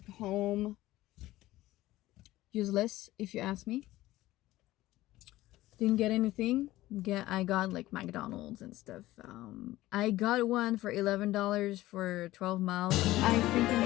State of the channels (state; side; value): quieter; right; 16.6 dB